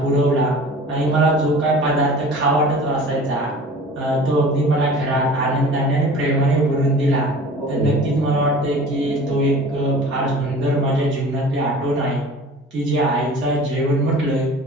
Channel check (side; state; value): both; normal; correlation 0.42